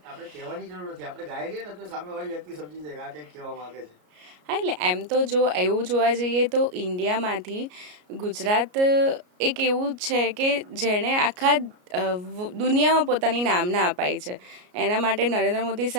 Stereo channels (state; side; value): late; left; 33 ms